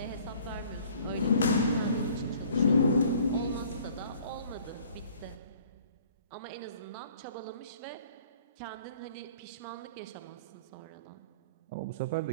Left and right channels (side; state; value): both; inverted; correlation -0.53